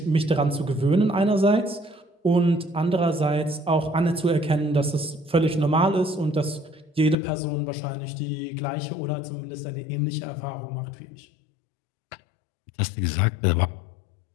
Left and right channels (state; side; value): drops out; right; at 7.2 s